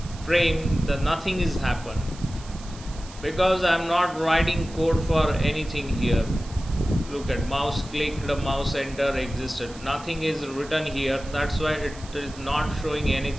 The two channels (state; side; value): noise; right; hiss, 19 dB below the sound